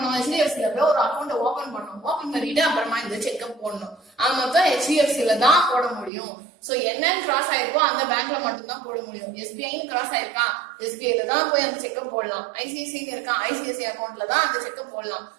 HDFCல போய் ஒரு அக்கௌண்ட் ஓபன் பண்ணும், ஓபன் பண்ணிட்டு அப்புறமா இந்த செக்கப் போடணும். மொத்தம் HDFCல தான் போட முடியும். சோ என்னன்னு கிராஸ் ஆயிருக்கோ அந்த பேங்க்ல மட்டும் தான் போட முடியும். SBIன்னு கிராஸ் ஆயிருக்கா, SBIல தான் போய் அந்த செக்கப் போடலாம். ICICI இருக்கா, ICICI அக்கௌண்ட்ல தான் அந்த செக்கப் போடலாம்,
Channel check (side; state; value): left; drops out; at 6.1 s